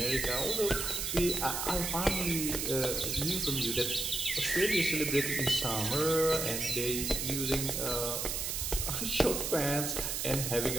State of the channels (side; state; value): right; noise; hiss, 2 dB below the sound